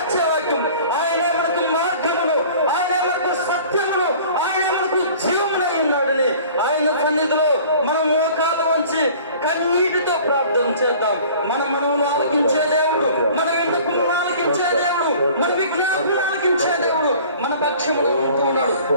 వాక్యం. ఆయన మనకు మార్గమును, ఆయన మనకు సత్యమును, ఆయన మనకు జీవమునై ఉన్నాడని ఆయన సన్నిధిలో మనం మోకాళ్ళ వంచి కన్నీటితో ప్రార్థన చేద్దాం. మన మనవులు ఆలకించే దేవుడు, మన విన్నపములు ఆలకించే దేవుడు, మన విజ్ఞాపనలు ఆలకించే దేవుడు మన పక్షములో ఉంటూ ఉన్నాడు,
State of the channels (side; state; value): both; inverted; correlation -0.47